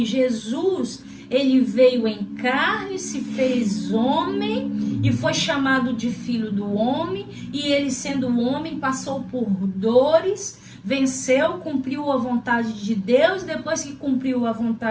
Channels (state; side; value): identical; both; correlation 1.00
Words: Jesus, ele veio em carne, se fez homem e foi chamado de Filho do Homem. E ele, sendo homem, passou por dores, venceu, cumpriu a vontade de Deus. Depois que cumpriu a